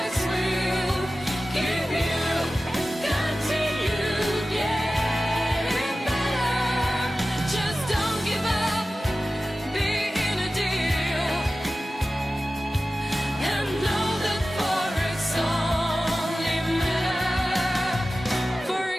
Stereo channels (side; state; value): both; normal; correlation 0.95